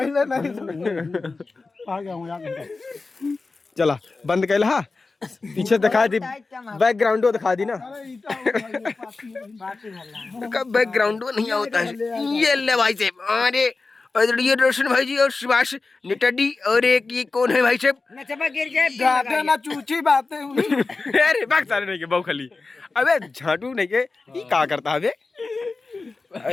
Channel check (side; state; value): right; quieter; 3.8 dB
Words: नहीं आ गया हूं यार चला बंद कैला हा पीछे दिखा दी बैकग्राउंड दिखा दी ना बैकग्राउंड नहीं होता है ये ले भाई साहब अरे ये रोशन भाई जी और सुभाष नेटाडी और एक ये कौन है भाई साहब ना चूची बातें अरे बाग सारे नहीं के बहु खाली अबे झाटू नहीं के ये क्या करता है बे